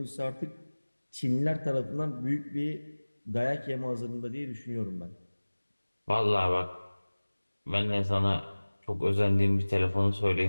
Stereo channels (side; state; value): both; inverted; correlation -1.00